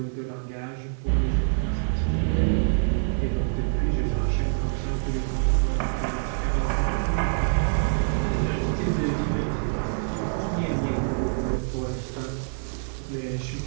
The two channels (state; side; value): silent; left; digital silence